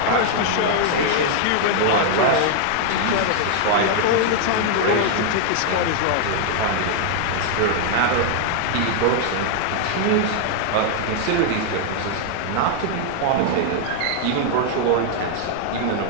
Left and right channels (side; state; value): both; different; correlation 0.00